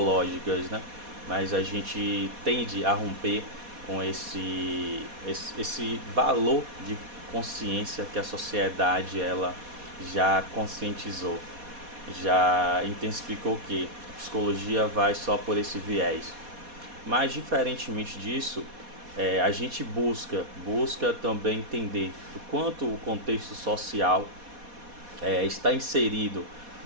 né? Mas a gente tende a romper com esse valor de consciência que a sociedade ela já conscientizou, já intensificou que a psicologia vai só por esse viés. Mas diferentemente disso, a gente busca também entender o quanto o contexto social está inserido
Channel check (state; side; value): late; left; 4.2 ms